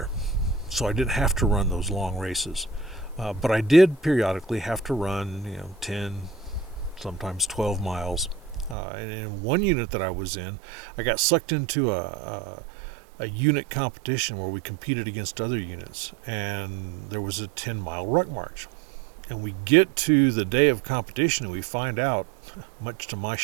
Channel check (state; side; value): drops out; left; at 8.8 s